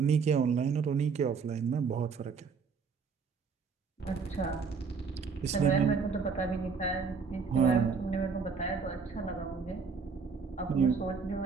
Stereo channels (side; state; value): left; quieter; 5.4 dB